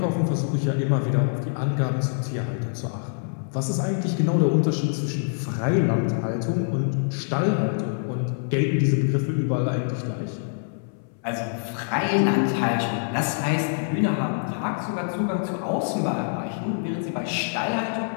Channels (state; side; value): silent; right; 62 dB below the other